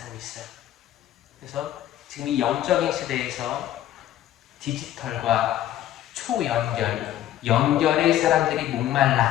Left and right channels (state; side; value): quieter; right; 12.7 dB